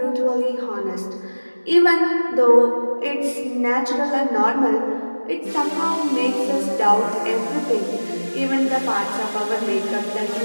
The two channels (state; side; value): inverted; both; correlation -1.00